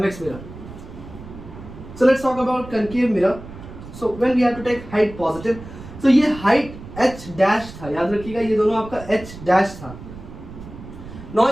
mirror. So let's talk about concave mirror. So when we have to take height positive, तो ये height h dash था, याद रखिएगा ये दोनों आपका h dash था।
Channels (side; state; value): right; noise; rumble, 14 dB below the sound